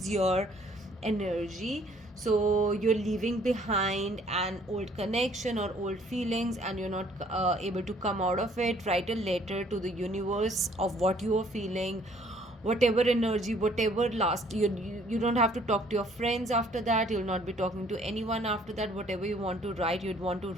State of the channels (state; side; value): normal; both; correlation 0.60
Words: your energy. So you're leaving behind an old connection or old feelings, and you're not able to come out of it. Write a letter to the universe of what you are feeling, whatever energy, whatever last you don't have to talk to your friends after that. You'll not be talking to anyone after that. Whatever you want to write, you'd want to